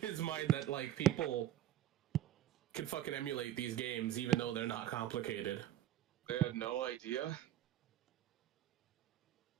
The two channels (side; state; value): left; quieter; 12.3 dB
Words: mind that like people can fucking emulate these games even though they're not complicated. They had no idea.